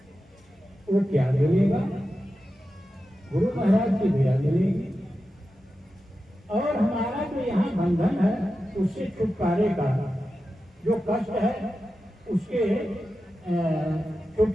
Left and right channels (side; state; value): both; normal; correlation 0.92